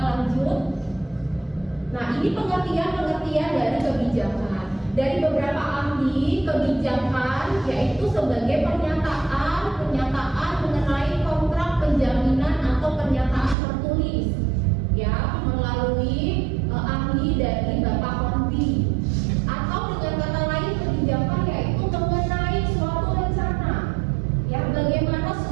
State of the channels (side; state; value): left; drops out; at 13.6 s